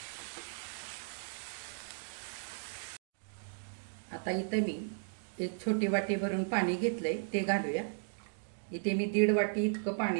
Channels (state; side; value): silent; left; digital silence